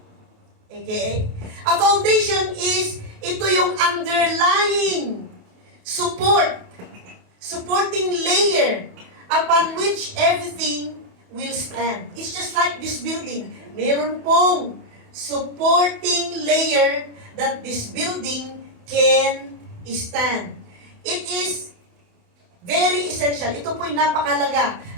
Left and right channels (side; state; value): left; late; 28 ms